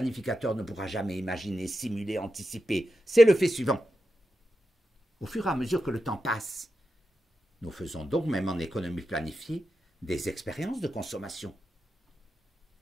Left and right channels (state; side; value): normal; both; correlation 0.89